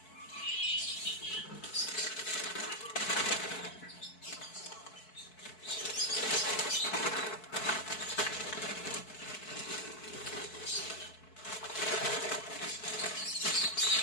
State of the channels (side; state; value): right; late; 4.6 ms